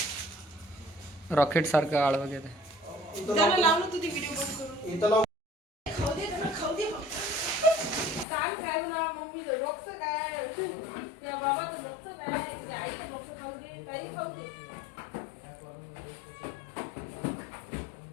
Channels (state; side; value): drops out; right; at 8.2 s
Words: रॉकेट सारखं आळवा घेते. इथं त्याला लाव. लावलं तू ती व्हिडिओ बंद करून. इथं लाव. खाऊ दे त्याला, खाऊ दे फक्त. काय खाऊ ना मम्मीचं डोकं काय, त्या बाबाचं डोकं काय, त्या आईचं डोकं खाऊ दे, काही खाऊ दे.